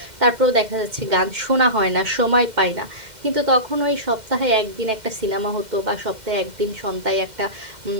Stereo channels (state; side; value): late; left; 2.1 ms